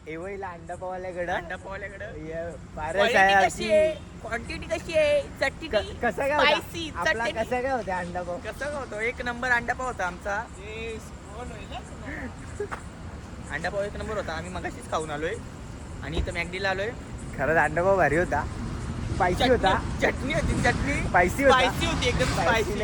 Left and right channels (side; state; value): both; identical; correlation 1.00